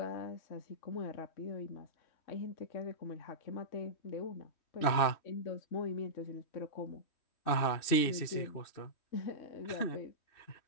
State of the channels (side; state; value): right; late; 2.6 ms